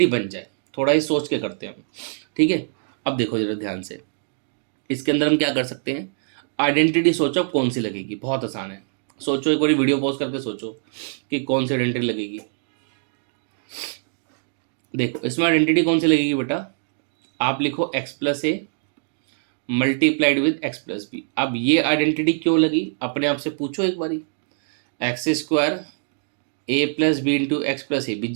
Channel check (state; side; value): silent; left; digital silence